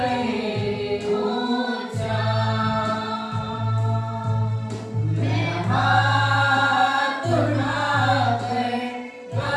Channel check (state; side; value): identical; both; correlation 1.00